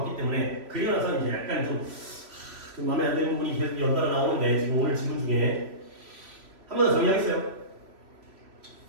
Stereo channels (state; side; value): late; left; 3.2 ms